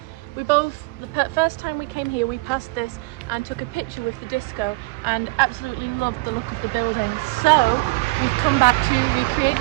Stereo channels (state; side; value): quieter; left; 24.5 dB